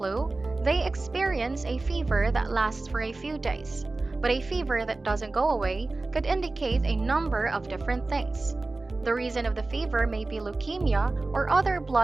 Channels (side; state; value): left; quieter; 3.3 dB